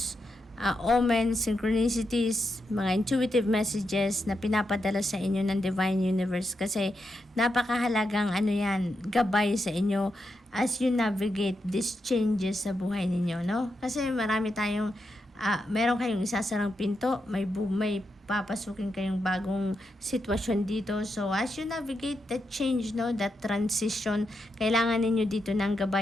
omens, synchronicities, mga intuitive messages na pinapadala sa inyo ng Divine Universe. Kasi napakahalagang yan, gabay sa inyo as you navigate these changes sa buhay ninyo, no? Kasi marami tayong, meron kayong isasarang pinto, may papasukin kayong bagong sitwasyon dito. So, as you navigate that change, no, that transition, kailangan ninyo dito ng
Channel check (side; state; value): both; normal; correlation 0.85